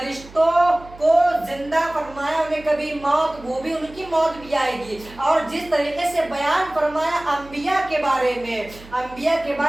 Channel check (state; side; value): noise; right; hum, 20 dB below the sound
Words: को जिंदा फरमाया, उन्हें कभी मौत, वो भी उनकी मौत भी आएगी। और जिस तरीके से बयान फरमाया अंबिया के बारे में, अंबिया के